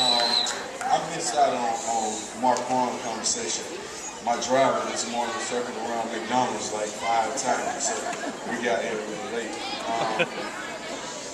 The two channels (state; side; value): identical; both; correlation 1.00